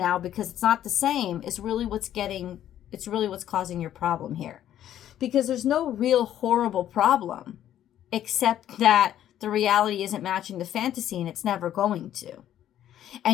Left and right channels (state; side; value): quieter; right; 11.4 dB